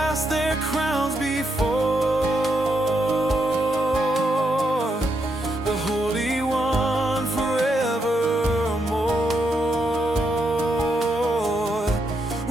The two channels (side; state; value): both; normal; correlation 0.80